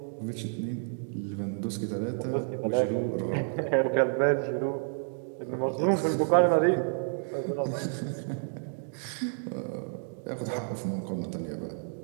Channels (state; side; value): silent; left; digital silence